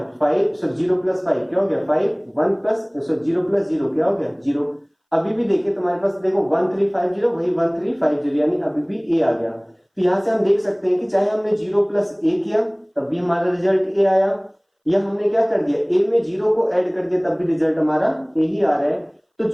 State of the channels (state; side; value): identical; both; correlation 1.00